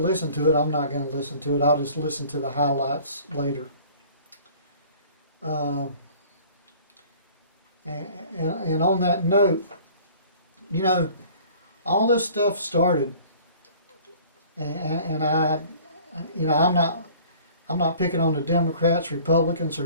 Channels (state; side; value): inverted; both; correlation -0.50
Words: to it. I'm not going to listen to it. I'll just listen to the highlights later. And on that note, you know, all this stuff started, and you know, I'm not picking on the Democrats, Republicans, or